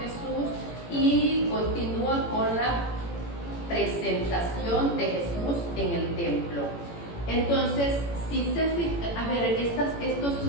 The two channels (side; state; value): right; late; 18 ms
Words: y continúa con la presentación de Jesús en el templo. Entonces, si se fijan, a ver, estos